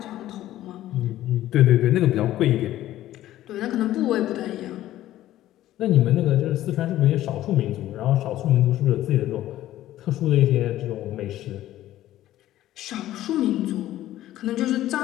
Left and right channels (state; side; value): quieter; right; 14.0 dB